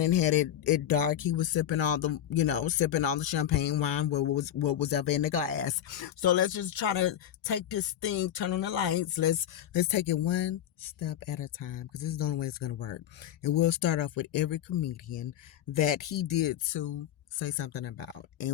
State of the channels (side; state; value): right; quieter; 10.9 dB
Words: had it dark. He was sipping all the champagne wine, what was ever in the glass. So let's just try to take this thing, turn on the lights. Let's take it one step at a time, because this is the only way it's going to work. And we'll start off with every comedian that he did to say something about,